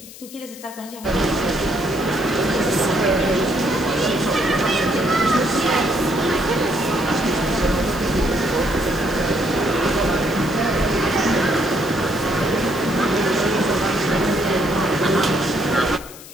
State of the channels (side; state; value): left; noise; hiss, 17 dB below the sound